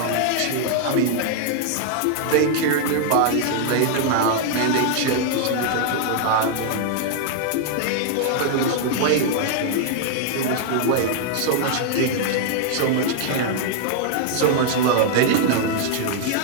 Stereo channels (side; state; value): both; different; correlation 0.00